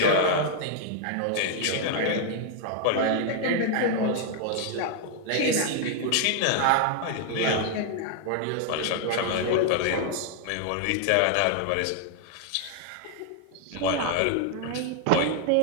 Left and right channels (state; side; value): different; both; correlation 0.00